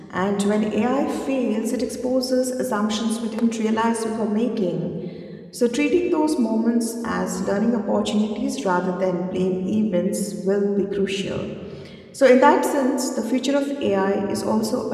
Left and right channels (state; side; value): identical; both; correlation 1.00